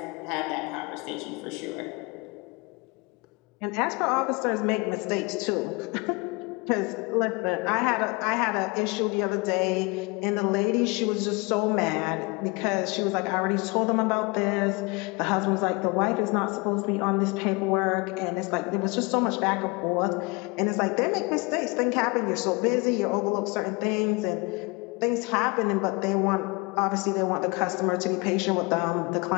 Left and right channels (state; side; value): quieter; right; 27.3 dB